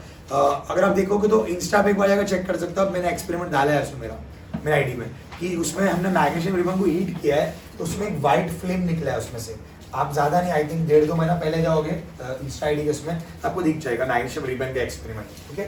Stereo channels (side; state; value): both; identical; correlation 1.00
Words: अगर आप देखोगे तो इंस्टा पे एक बार जाकर चेक कर सकते हो। मैंने एक्सपेरिमेंट डाला है उसमें मेरा आईडी में, कि उसमें हमने मैग्नीशियम रिबन को हीट किया है तो उसमें एक वाइट फ्लेम निकला है उसमें से। आप ज्यादा नहीं, आई थिंक 1.5-2 महीना पहले जाओगे इंस्टा आईडी के उसमें, आपको दिख जाएगा मैग्नीशियम रिबन का एक्सपेरिमेंट। ठीक है,